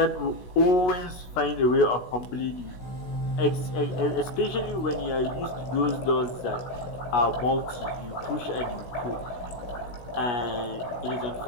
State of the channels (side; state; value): right; late; 16 ms